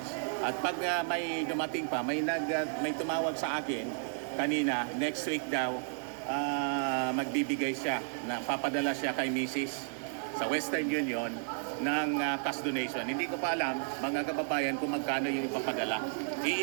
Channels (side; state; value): left; silent; digital silence